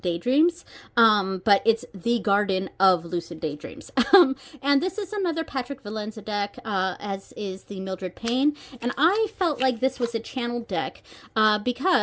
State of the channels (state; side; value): identical; both; correlation 1.00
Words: Daydreams, but it's the Garden of Lucid Daydreams. And this is another Patrick Valenza deck, as is the Mildred Payne. And I felt like this was a channeled deck